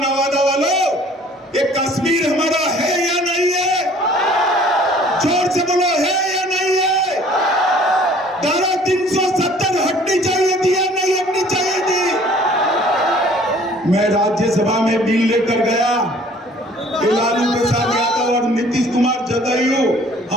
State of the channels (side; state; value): both; normal; correlation 0.54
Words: वालों, ये कश्मीर हमारा है या नहीं है? जोर से बोलो, है या नहीं है? धारा 370 हटनी चाहिए थी या नहीं हटनी चाहिए थी? मैं राज्यसभा में बिल लेकर गया। लालू प्रसाद यादव और नीतीश कुमार जदयू